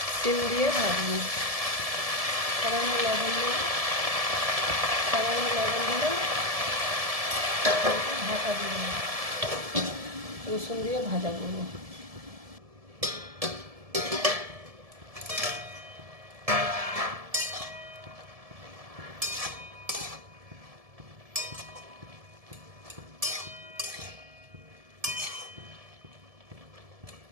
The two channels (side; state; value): left; late; 1.7 ms